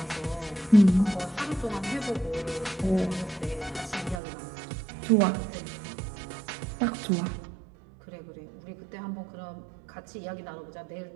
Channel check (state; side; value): drops out; left; at 4.2 s